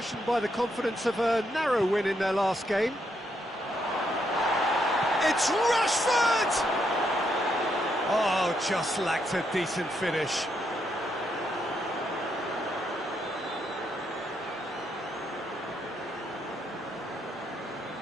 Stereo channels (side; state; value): both; normal; correlation 0.77